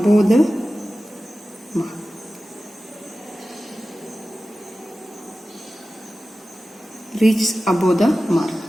the mark. Reach above the mark.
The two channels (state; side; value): normal; both; correlation 0.95